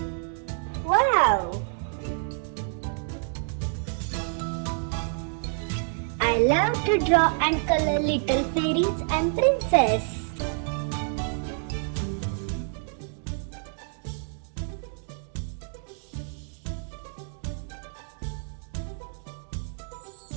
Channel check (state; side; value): silent; left; 59 dB below the other